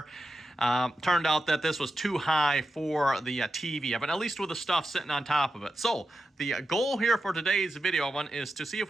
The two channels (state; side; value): normal; both; correlation 0.90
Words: turned out that this was too high for the TV, but at least with the stuff sitting on top of it. So the goal here for today's video is to see if